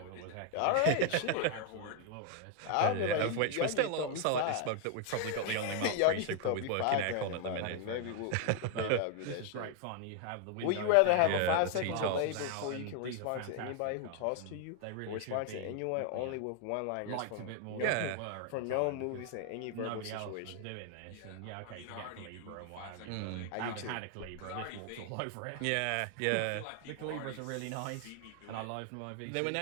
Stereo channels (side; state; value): both; different; correlation 0.00